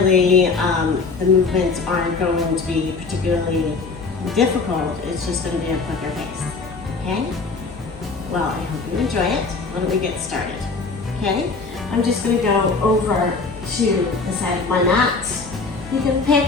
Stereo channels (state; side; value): quieter; right; 4.2 dB